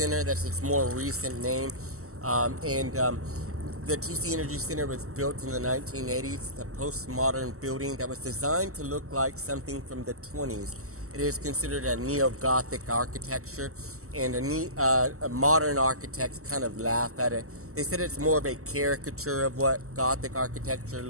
That's its more recent name. The TC Energy Center was built in the 1980s. It's a postmodern building that was designed to look like something from the 20s. It is considered a neo-Gothic architecture, and a modern architects kind of laugh at it. They said it's more of a caricature of what Gothic architecture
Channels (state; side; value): late; left; 0.64 ms